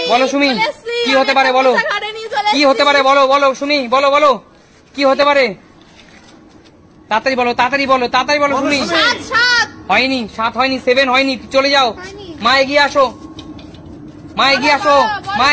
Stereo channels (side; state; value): both; identical; correlation 1.00